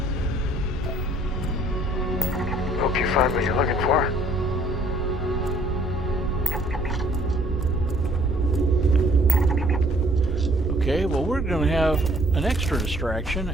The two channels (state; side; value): normal; both; correlation 0.59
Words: Hope you find what you're looking for. Okay, well, we're going to have an extra distraction